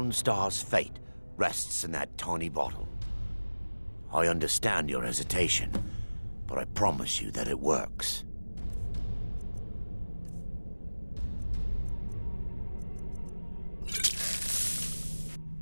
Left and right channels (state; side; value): inverted; both; correlation -1.00